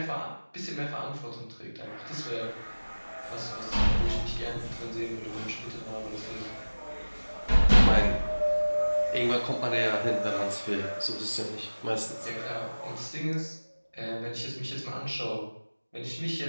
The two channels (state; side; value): inverted; both; correlation -1.00